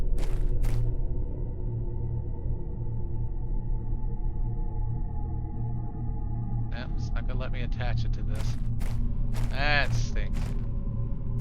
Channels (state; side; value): identical; both; correlation 1.00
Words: It's not gonna let me attach it to this. That stinks.